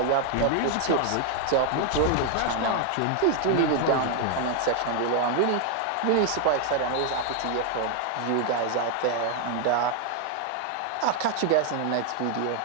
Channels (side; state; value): both; different; correlation 0.00